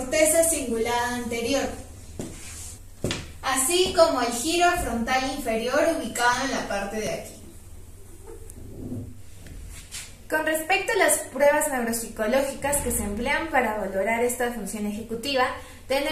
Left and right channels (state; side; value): identical; both; correlation 1.00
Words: cingulada anterior, así como el giro frontal inferior ubicado en la parte de aquí. Con respecto a las pruebas neuropsicológicas que se emplean para valorar esta función ejecutiva,